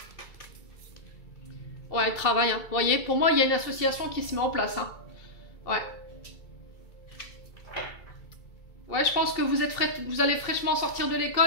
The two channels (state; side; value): late; right; 2.3 ms